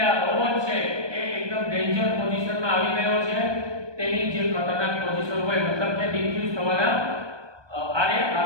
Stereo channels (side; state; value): left; late; 1.2 ms